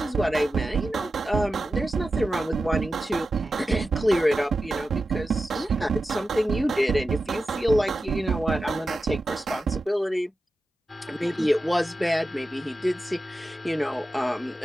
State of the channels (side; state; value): both; normal; correlation 0.92